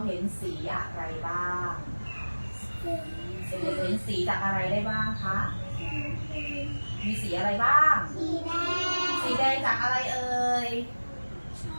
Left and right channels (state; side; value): inverted; both; correlation -1.00